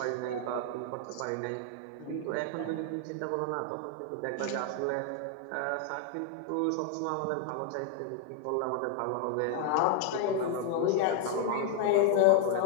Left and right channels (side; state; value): both; different; correlation 0.00